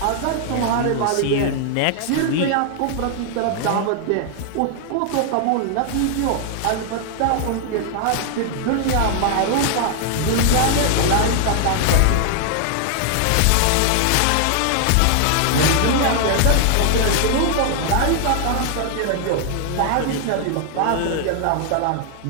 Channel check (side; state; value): both; different; correlation 0.00